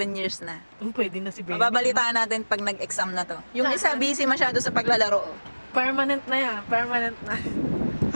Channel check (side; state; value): both; inverted; correlation -1.00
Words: years na. Pwede na si Baby. Mababalitaan natin pag nag-exam na to. Yung isa busy masyado sa paglalaro. Permanent na yan. Permanent na.